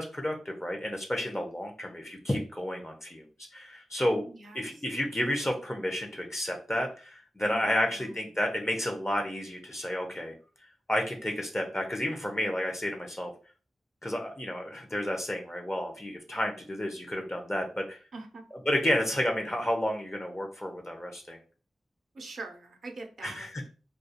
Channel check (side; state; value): both; normal; correlation 0.91